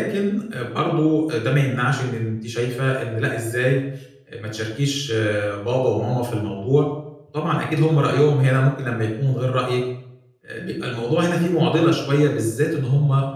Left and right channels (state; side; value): identical; both; correlation 1.00